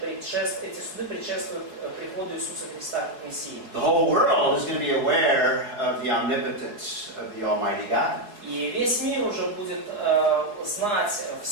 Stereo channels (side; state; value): left; late; 4.8 ms